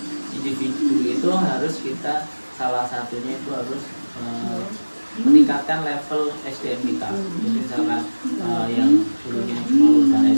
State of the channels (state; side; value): inverted; both; correlation -1.00